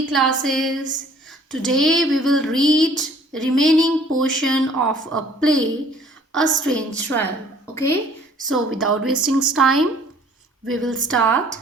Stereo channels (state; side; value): normal; both; correlation 0.55